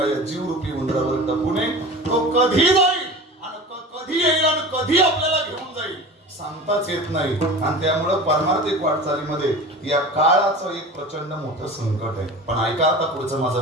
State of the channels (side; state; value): both; normal; correlation 0.35